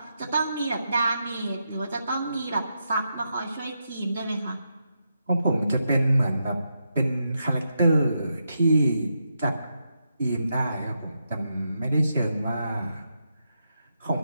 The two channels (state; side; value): inverted; both; correlation -0.84